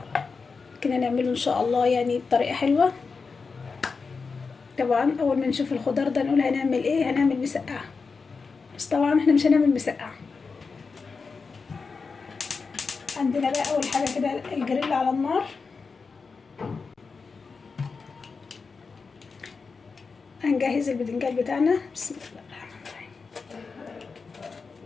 كده نعمله ان شاء الله يعني بطريقة حلوة. طبعا اول ما نشوف الخضار ده نقول هنعمل ايه، هنعمل مسقعة. بس طبعا احنا مش هنعمل مسقعة. عندنا بقى اول حاجة كده الجريل على النار. هنجهز البدنجان بتاعنا. بسم الله الرحمن الرحيم.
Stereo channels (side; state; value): right; quieter; 4.8 dB